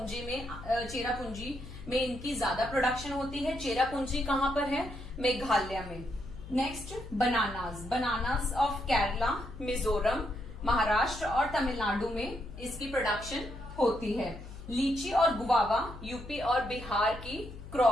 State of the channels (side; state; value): left; noise; hum, 13 dB below the sound